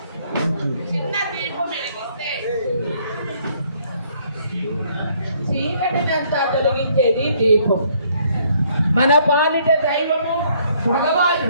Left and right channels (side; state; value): both; inverted; correlation -0.65